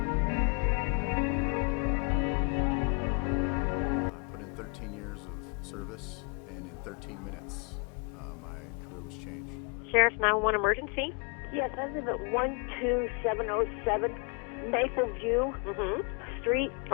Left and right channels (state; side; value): quieter; right; 36.6 dB